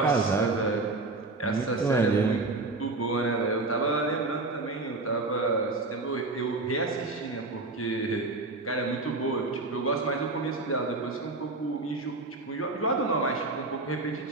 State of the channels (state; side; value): quieter; left; 3.3 dB